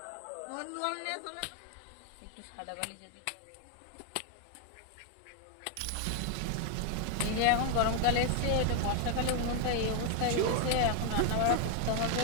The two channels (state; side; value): different; both; correlation 0.00